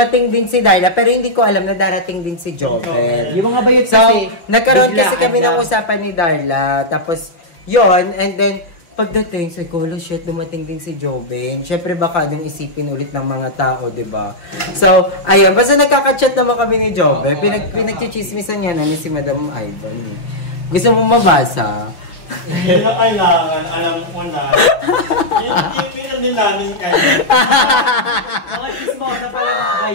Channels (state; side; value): late; right; 5.6 ms